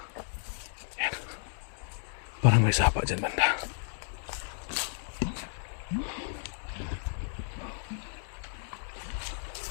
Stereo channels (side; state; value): right; silent; digital silence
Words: Yan. Parang may sapa dyan banda.